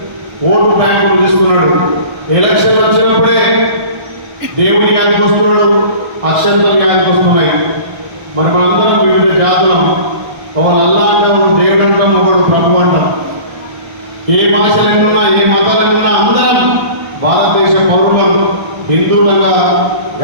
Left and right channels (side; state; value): left; late; 1.1 ms